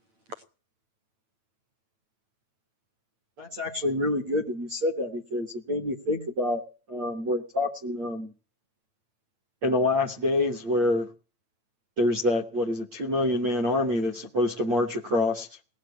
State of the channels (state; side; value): late; left; 9.0 ms